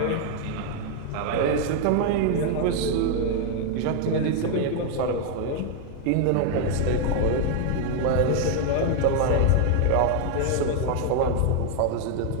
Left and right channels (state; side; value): different; both; correlation 0.00